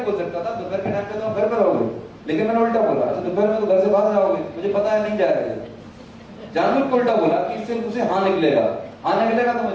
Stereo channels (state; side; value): identical; both; correlation 1.00